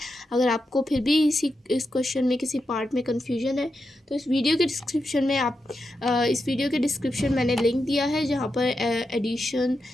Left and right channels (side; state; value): both; normal; correlation 0.87